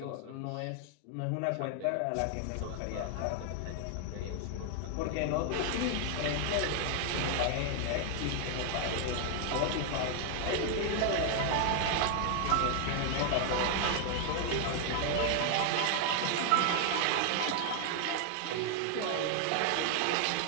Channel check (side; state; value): both; different; correlation 0.00